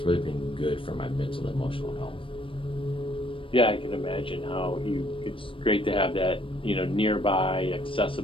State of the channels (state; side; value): late; right; 0.25 ms